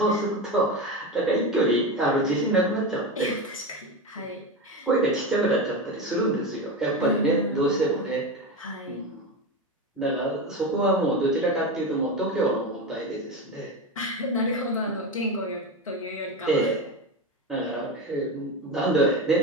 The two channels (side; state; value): both; normal; correlation 0.19